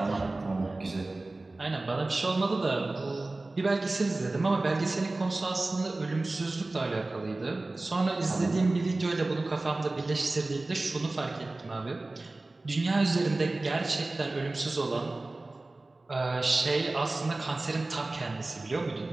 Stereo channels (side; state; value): left; quieter; 3.0 dB